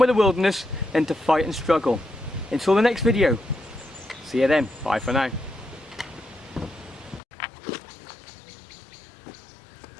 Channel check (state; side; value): drops out; right; at 7.2 s